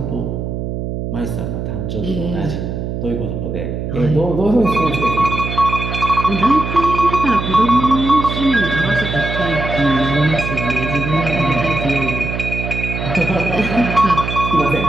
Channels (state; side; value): noise; right; hum, 4 dB below the sound